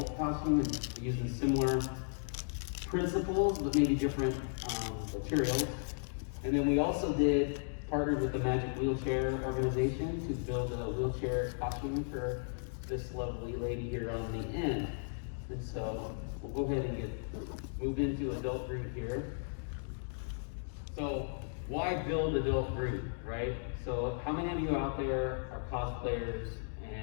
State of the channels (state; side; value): silent; right; digital silence